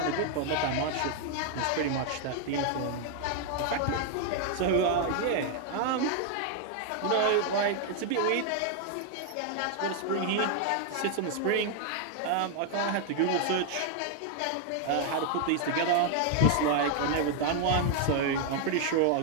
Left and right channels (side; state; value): both; different; correlation 0.00